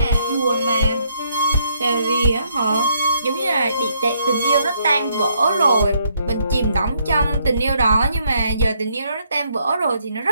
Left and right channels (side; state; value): both; inverted; correlation -0.71